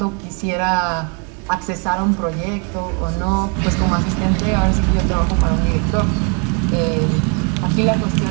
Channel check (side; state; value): left; quieter; 35.9 dB